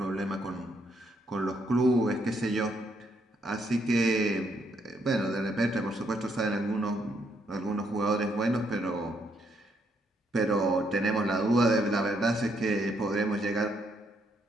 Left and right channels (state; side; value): normal; both; correlation 0.74